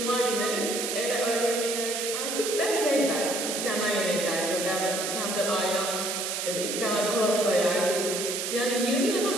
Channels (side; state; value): right; noise; hiss, 2 dB below the sound